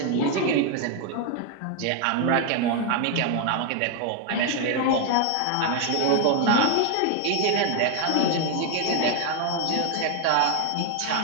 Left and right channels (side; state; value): both; different; correlation 0.01